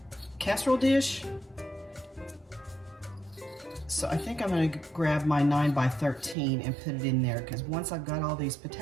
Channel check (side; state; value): left; drops out; at 6.4 s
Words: casserole dish. So I think I'm gonna grab my 9x13 and put it in there, because once I've got all these